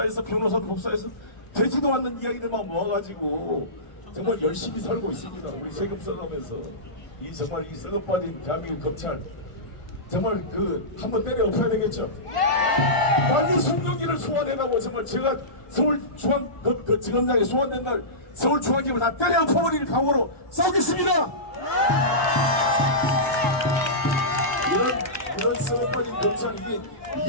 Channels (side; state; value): right; late; 1.5 ms